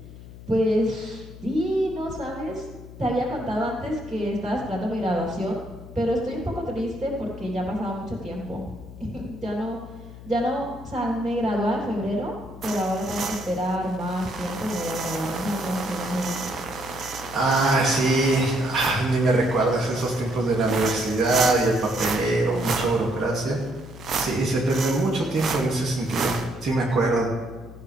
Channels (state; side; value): noise; left; hum, 16 dB below the sound